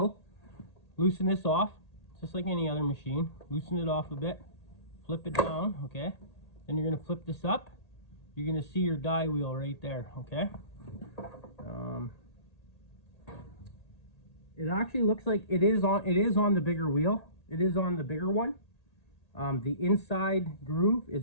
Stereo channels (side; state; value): right; late; 1.8 ms